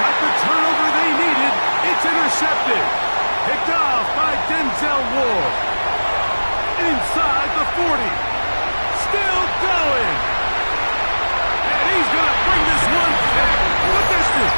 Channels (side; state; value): both; inverted; correlation -1.00